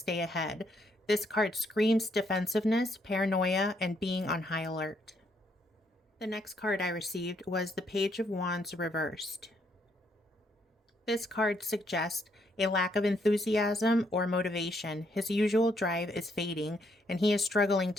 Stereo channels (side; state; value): both; normal; correlation 0.72